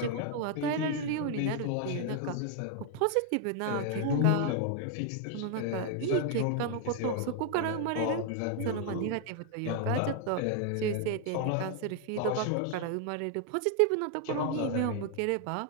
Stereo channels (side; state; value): both; different; correlation 0.00